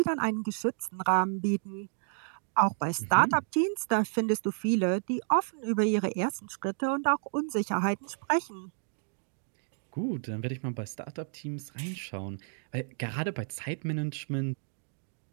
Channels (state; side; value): silent; left; digital silence